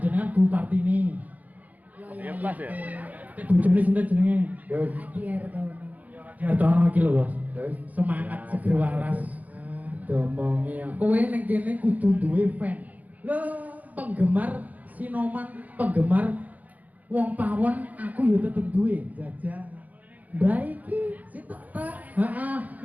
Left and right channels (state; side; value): late; left; 0.078 ms